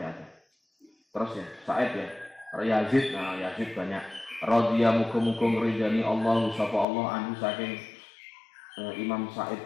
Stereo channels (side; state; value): right; drops out; at 6.9 s